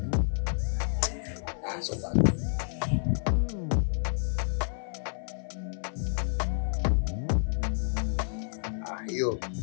So bad. Hiyo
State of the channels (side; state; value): right; silent; 58 dB below the other